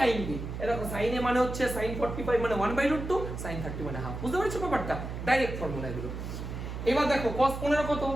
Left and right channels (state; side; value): noise; right; hum, 7 dB below the sound